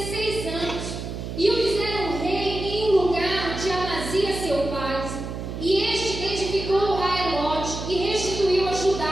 anos, e o fizeram rei em um lugar de Amazias seu pai. E este edificou a Elote e restituiu a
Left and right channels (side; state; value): right; noise; hum, 7 dB below the sound